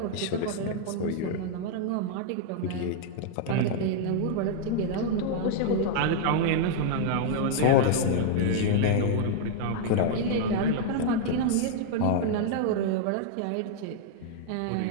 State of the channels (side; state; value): both; different; correlation -0.01